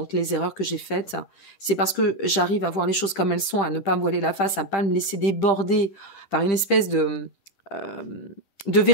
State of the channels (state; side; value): late; right; 10 ms